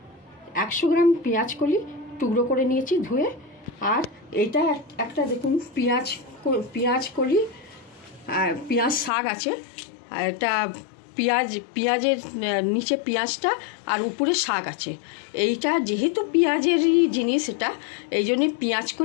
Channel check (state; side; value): drops out; right; at 9.1 s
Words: 100 গ্রাম পেঁয়াজ কলি টুকরো করে নিয়েছি ধুয়ে। আর এইটা একটা দেখুন পেঁয়াজ কলি, পেঁয়াজ শাক আছে। এটা পেঁয়াজের নিচে পেঁয়াজটা আর উপরে শাক আছে। এইটা যেহেতু পেঁয়াজেরই জিনিস, এটা এই জন্যে পেঁয়াজ